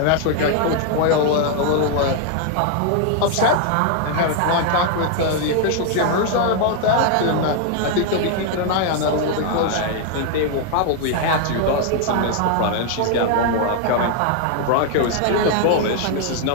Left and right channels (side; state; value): both; different; correlation 0.00